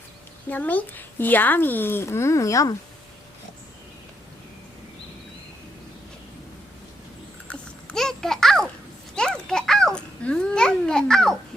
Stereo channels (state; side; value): normal; both; correlation 0.79